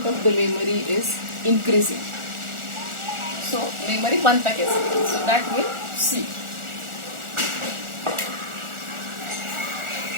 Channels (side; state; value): left; late; 1.4 ms